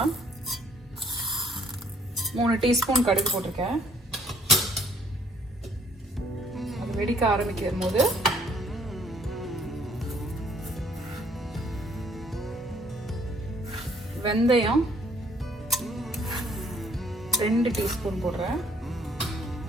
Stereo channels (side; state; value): both; normal; correlation 0.62